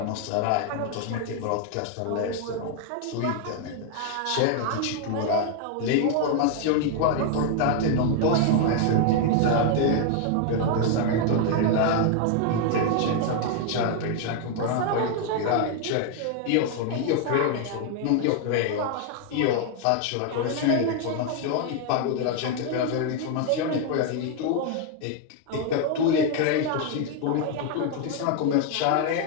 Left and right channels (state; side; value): different; both; correlation 0.00